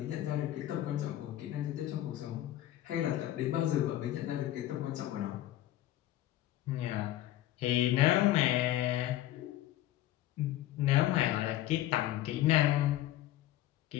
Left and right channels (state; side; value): quieter; right; 14.1 dB